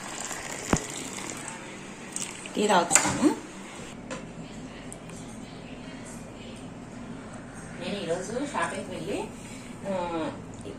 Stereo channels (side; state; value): both; identical; correlation 1.00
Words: టీ తాగుతాను. నేను ఈరోజు షాపింగ్కి వెళ్ళి